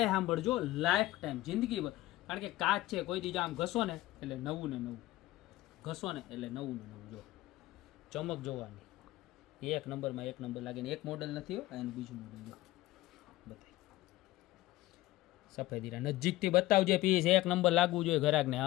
સાંભળજો, લાઈફ ટાઈમ જિંદગી ભર. કારણ કે કાચ છે, કોઈ દીજા આમ ઘસો ને એટલે નવું ને નવું, ઘસો ને એટલે નવું ને નવું. જો ચમક જોવાની એક નંબરમાં એક નંબર લાગે ને. એક મોડલ નથી હોય, એનું બીજું મોડલ જો બતાય. સફેદ હીરા નજીકથી બતાવજે પીસ, એક નંબર લાગવું જોઈએ ઘરાકને.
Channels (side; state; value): right; quieter; 17.0 dB